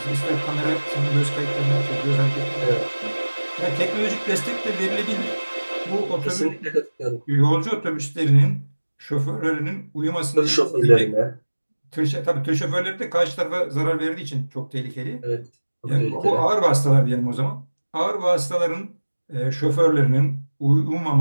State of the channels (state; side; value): inverted; both; correlation -1.00